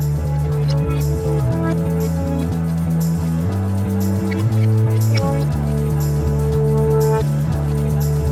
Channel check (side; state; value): both; identical; correlation 1.00